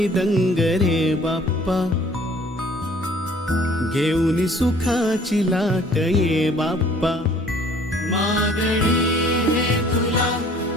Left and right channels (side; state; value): both; normal; correlation 0.55